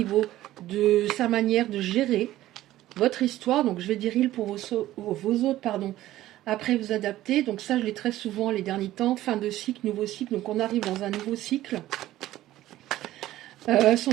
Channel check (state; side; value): quieter; left; 14.8 dB